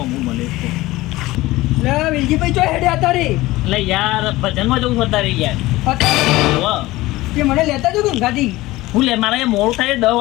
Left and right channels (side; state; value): right; quieter; 18.5 dB